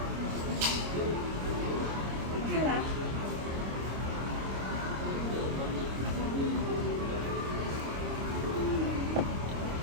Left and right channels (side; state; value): left; late; 26 ms